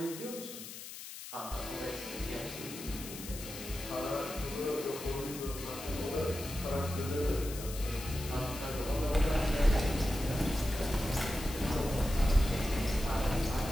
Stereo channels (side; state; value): left; noise; hiss, 11 dB below the sound